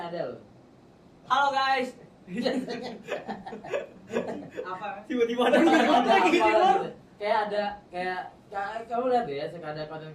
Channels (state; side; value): identical; both; correlation 1.00